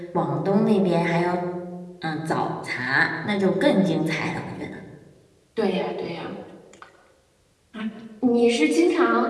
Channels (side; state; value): both; identical; correlation 1.00